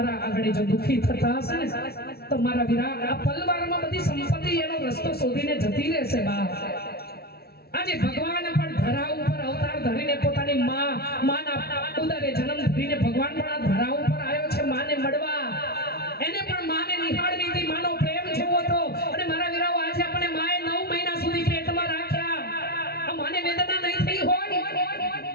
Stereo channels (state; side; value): late; right; 0.45 ms